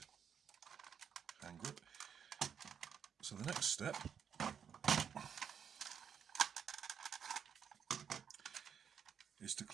hand grip. So the next step is to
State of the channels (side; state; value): left; quieter; 7.7 dB